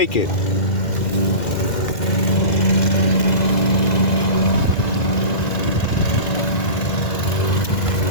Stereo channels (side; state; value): right; late; 2.0 ms